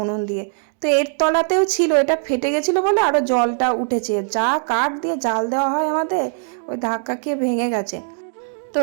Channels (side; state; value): left; silent; 65 dB below the other